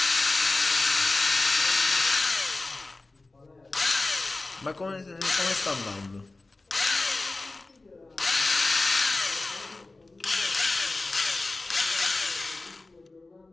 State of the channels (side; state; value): right; quieter; 3.3 dB